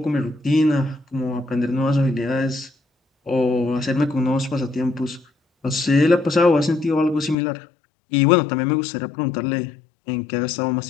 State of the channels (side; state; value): right; drops out; at 7.4 s